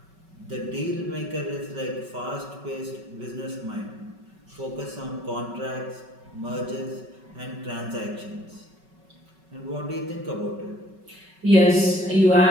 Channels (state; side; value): late; left; 5.3 ms